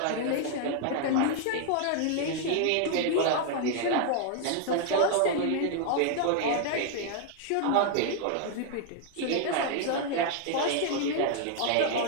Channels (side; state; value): both; different; correlation 0.00